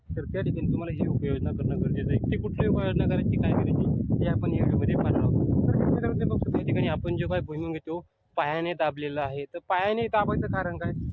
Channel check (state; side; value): identical; both; correlation 1.00